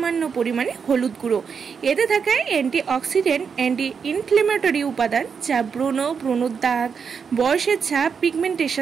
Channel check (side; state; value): left; quieter; 6.2 dB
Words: পরিমাণে হলুদ গুঁড়ো। এতে থাকে অ্যান্টিঅক্সিডেন্ট, অ্যান্টি ইনফ্লেমেটরি উপাদান, যা ব্রণর দাগ, বয়সের ছাপ,